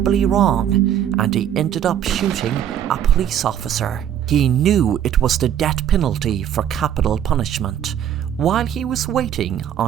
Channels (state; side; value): quieter; left; 10.0 dB